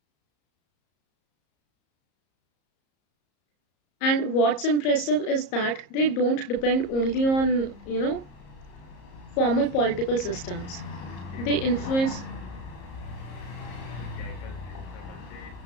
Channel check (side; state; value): right; late; 34 ms